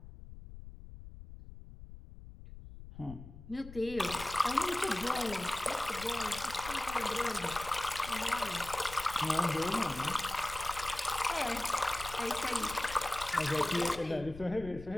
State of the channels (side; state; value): left; noise; rumble, 14 dB below the sound